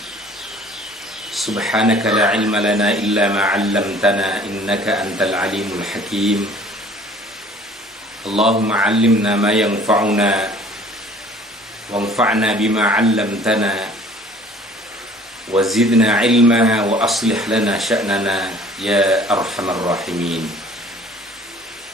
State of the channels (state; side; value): normal; both; correlation 0.51